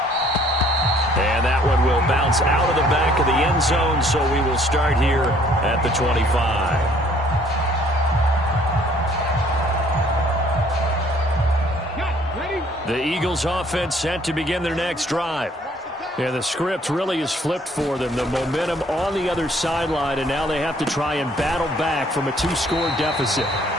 And that one will bounce out of the back of the end zone, so we will start here at the 25. The Eagles offense set to begin their next drive. And the script really is flipped for them. The momentum on the other sideline, and now they have to try and battle back from a 2-score deficit.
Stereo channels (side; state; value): both; normal; correlation 0.60